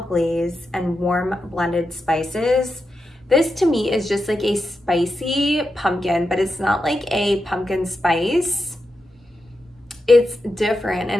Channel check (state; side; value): normal; both; correlation 0.88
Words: glaze, and warm blended spices. This to me is just like a spicy pumpkin, but it's not like a pumpkin spice. It's different,